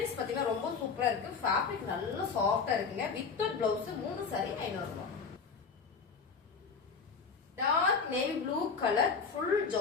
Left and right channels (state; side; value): quieter; right; 5.3 dB